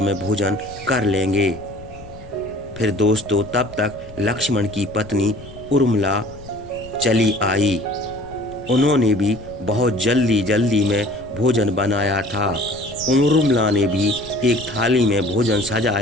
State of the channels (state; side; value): noise; left; rumble, 18 dB below the sound